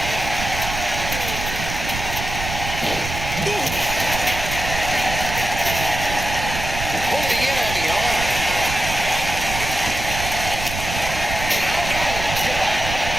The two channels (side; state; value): right; noise; rumble, 6 dB below the sound